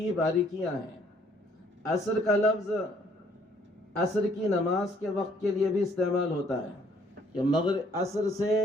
باریکیاں ہیں۔ عصر کا لفظ عصر کی نماز کے وقت کے لیے بھی استعمال ہوتا ہے کہ مغرب عصر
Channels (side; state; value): both; normal; correlation 0.63